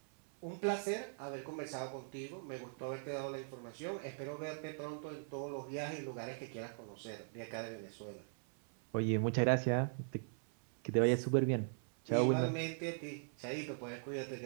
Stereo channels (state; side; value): silent; left; 51 dB below the other